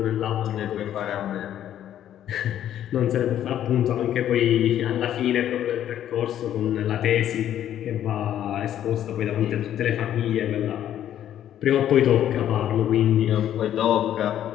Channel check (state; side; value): quieter; right; 11.0 dB